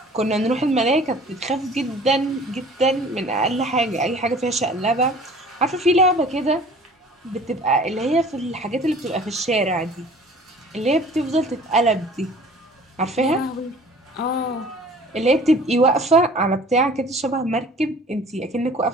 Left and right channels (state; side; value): normal; both; correlation 0.48